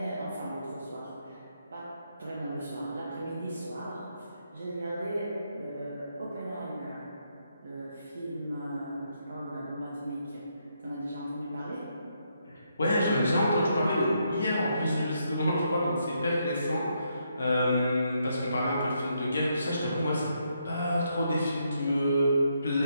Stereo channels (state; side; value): inverted; both; correlation -0.77